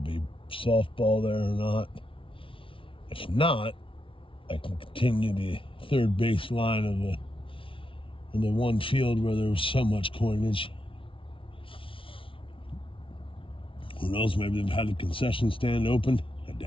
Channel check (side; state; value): right; late; 0.25 ms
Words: be softball there or not. If not, I can continue the third base line of the one field where there was so much coinage. Who knows, maybe they've had a concession stand open. I